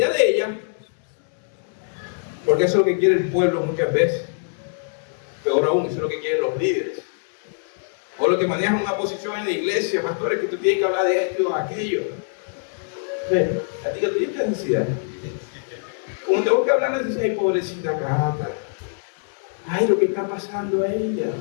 de ella, porque eso es lo que quiere el pueblo muchas veces, peor aún, eso es lo que quieren los líderes, o los que manejan una posición en la iglesia, pastores, que tú tienes que hablar de esto o aquello. Katica tiene esta necesidad. Como tengo que hablar de la necesidad, ay, pobrecita Cata, ay, lo que está pasando a ella.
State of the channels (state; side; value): silent; right; 63 dB below the other